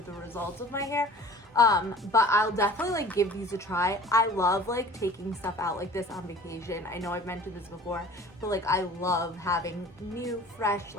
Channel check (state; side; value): normal; both; correlation 0.45